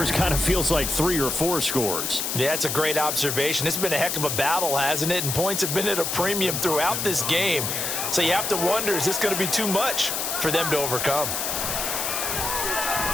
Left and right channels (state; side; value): noise; left; hiss, 1 dB below the sound